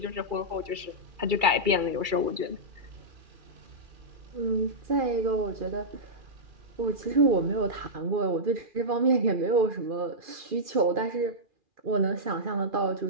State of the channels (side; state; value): left; late; 2.3 ms